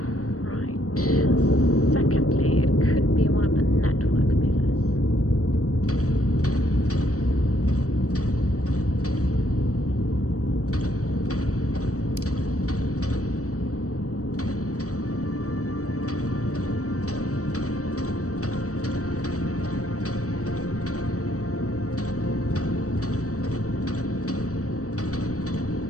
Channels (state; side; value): late; right; 0.66 ms